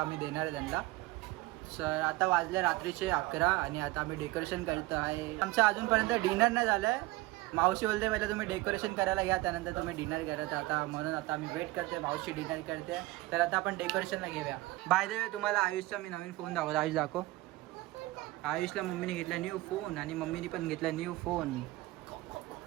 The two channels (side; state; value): left; quieter; 19.6 dB